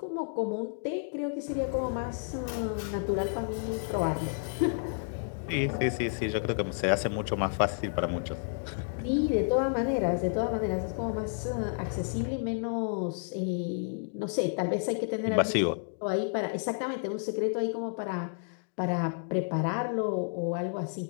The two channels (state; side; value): silent; right; digital silence